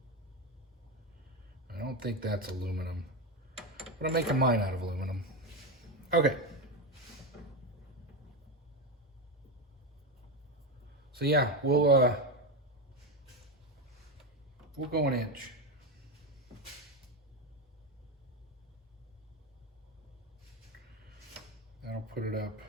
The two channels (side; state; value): both; normal; correlation 0.12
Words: I don't think that's aluminum, but I'm making mine out of aluminum. Okay. So yeah, we'll go an inch. That'll put it up